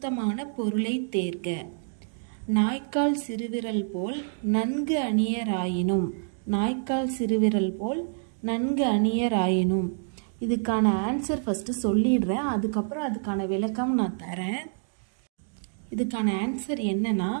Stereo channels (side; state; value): left; silent; digital silence